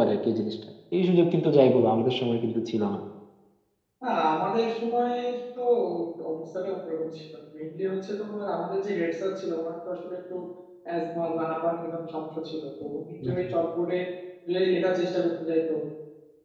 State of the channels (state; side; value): identical; both; correlation 1.00